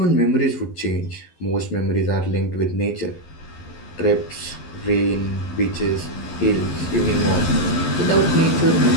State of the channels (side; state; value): right; late; 12 ms